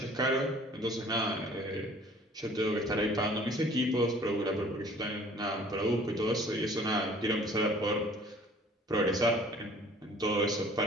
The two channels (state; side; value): normal; both; correlation 0.52